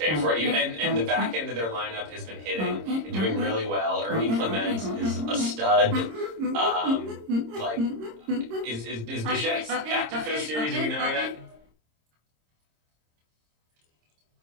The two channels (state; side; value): late; left; 26 ms